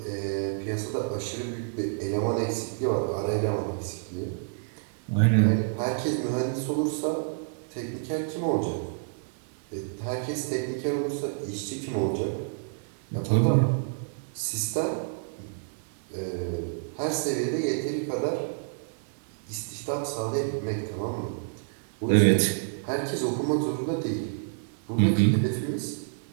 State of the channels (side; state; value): left; silent; 59 dB below the other